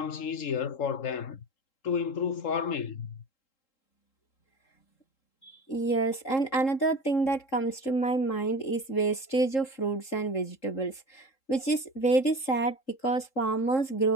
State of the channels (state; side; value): late; right; 3.7 ms